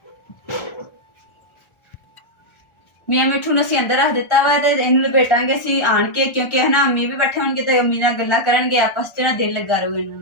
ਮੀਆਂ ਮਿੱਠੂ ਨੂੰ ਅਸੀਂ ਅੰਦਰ ਰੱਖ ਦਿੱਤਾ ਵਾ ਤੇ ਇਹਨੂੰ ਲਪੇਟਾਂਗੇ ਅਸੀਂ ਆਣ ਕੇ, ਕਿਉਂਕਿ ਹੈ ਨਾ ਅੰਮੀ ਵੀ ਬੈਠੇ ਹੋਣਗੇ ਤੇ ਅੰਮੀ ਨਾਲ ਗੱਲਾਂ ਕਰਨਗੇ, ਆਪਸ 'ਚ ਨਾ ਦਿਲ ਲੱਗਾ ਰਹੂਗਾ ਇਹਨਾਂ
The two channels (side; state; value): right; late; 1.4 ms